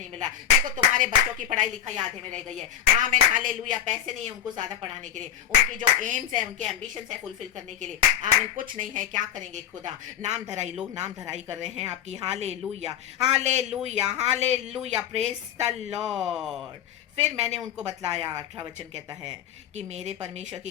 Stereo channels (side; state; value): right; quieter; 10.1 dB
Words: मिला, देखो तुम्हारे बच्चों की पढ़ाई लिखाई आधे में रह गई है। आमीन, हालेलुया। पैसे नहीं है उनको ज्यादा पढ़ाने के लिए, उनकी जो एम्स है, उनके एम्बिशंस है फुलफिल करने के लिए, आमीन, कुछ नहीं है। क्या करेंगे खुदा, नाम धराई, लोग नाम धराई कर रहे हैं आपकी, hallelujah, hallelujah, hallelujah, praise the Lord. फिर मैंने उनको बतलाया, 18 वचन कहता है कि मेरे परमेश्वर की